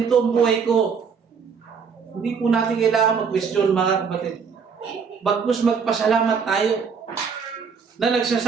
ang buhay ko? Hindi po natin kailangan mag-question, mga kapatid. Bagkus magpasalamat tayo na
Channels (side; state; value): left; quieter; 6.1 dB